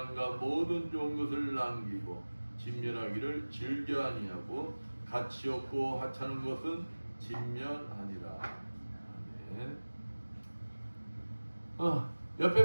모든 좋은 것을 남기고 진멸하기를 즐겨 아니하고 가치 없고 하찮은 것은 진멸하니라. 아멘.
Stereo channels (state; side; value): inverted; both; correlation -1.00